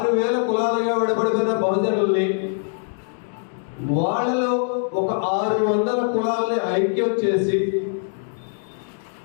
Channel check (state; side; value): silent; right; digital silence